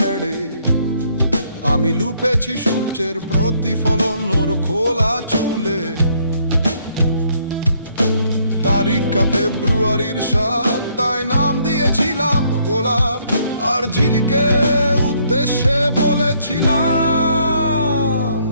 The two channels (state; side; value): inverted; both; correlation -0.68